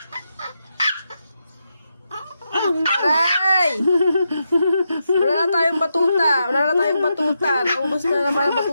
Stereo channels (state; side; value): inverted; both; correlation -0.85